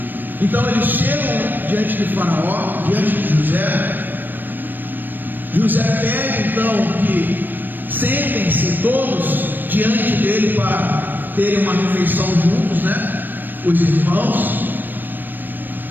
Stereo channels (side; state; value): left; late; 0.092 ms